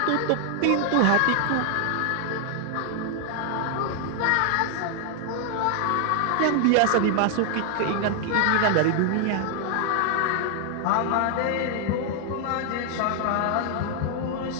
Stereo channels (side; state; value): both; different; correlation 0.00